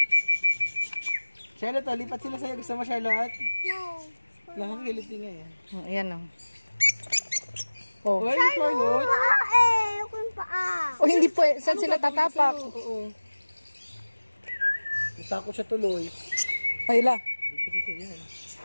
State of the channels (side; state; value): both; inverted; correlation -1.00